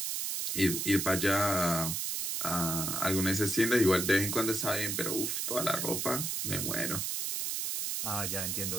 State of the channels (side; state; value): right; noise; hiss, 1 dB below the sound